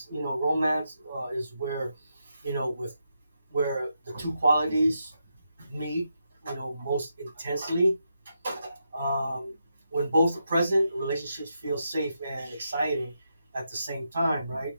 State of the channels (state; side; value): inverted; both; correlation -0.84